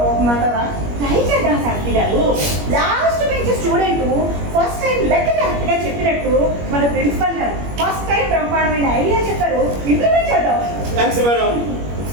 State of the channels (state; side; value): late; left; 21 ms